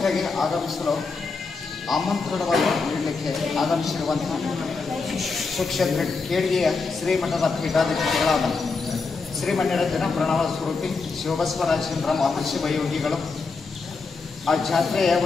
ಆಗಮಿಸಲು ಆಮಂತ್ರಣವನ್ನು ನೀಡಲಿಕ್ಕೆ ಆಗಮಿಸಿರುವಂತಹ ಸುಕ್ಷೇತ್ರ ಕೇಳಿಗೆಯ ಶ್ರೀಮಠದ ಪೀಠಾಧಿಪತಿಗಳಾದ ಶ್ರೀಮಣ್ಯರಂಜನ ಪ್ರಣವ ಸ್ವರೂಪಿ ಶಿವಬಸವರಾಜೇಂದ್ರ ಮಹರ್ಷಿ ವಯೋಗಿಗಳು ಆ ಜಾತ್ರೆಯ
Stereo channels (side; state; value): right; quieter; 4.4 dB